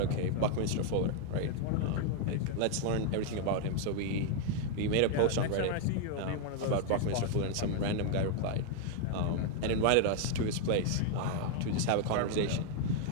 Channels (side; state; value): both; different; correlation 0.00